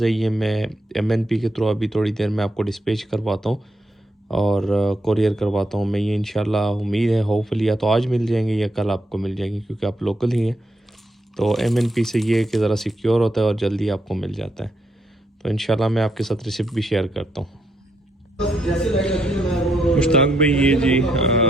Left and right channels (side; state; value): both; normal; correlation 0.78